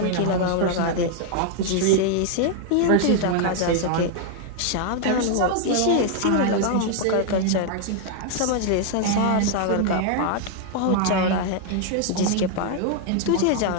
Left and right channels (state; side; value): different; both; correlation 0.00